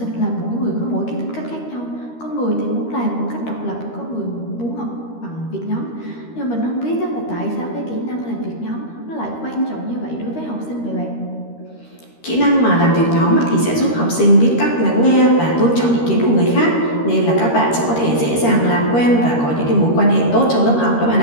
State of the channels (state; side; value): late; right; 13 ms